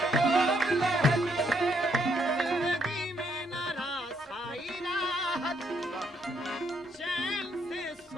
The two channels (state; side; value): normal; both; correlation 0.73